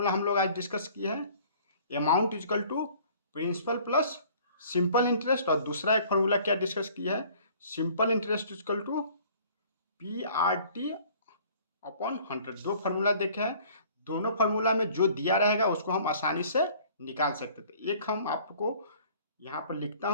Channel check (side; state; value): both; inverted; correlation -0.53